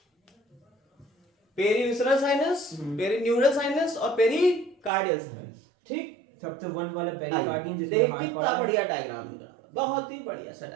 पेरीविसरल साइनस, पेरीन्यूरल साइनस और पेरीकार्डियल साइनस, ठीक। सबसे 1 वाला पेरिकार्डियम जिसमें देख हार्ट कितना बढ़िया डायग्राम मिल रहा है, बहुत ही बढ़िया सा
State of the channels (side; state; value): left; drops out; at 4.9 s